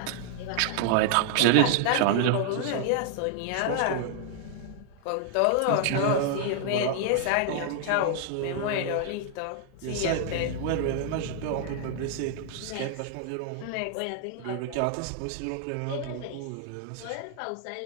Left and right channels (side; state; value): both; different; correlation 0.00